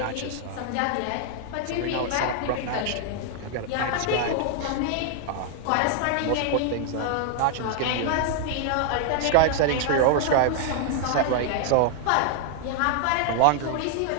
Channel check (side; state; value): both; different; correlation 0.00